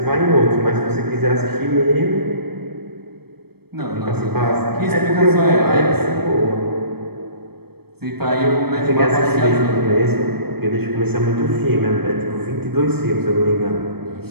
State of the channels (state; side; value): late; left; 0.96 ms